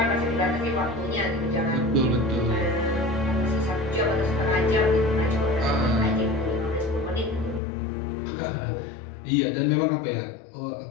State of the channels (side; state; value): right; drops out; at 7.6 s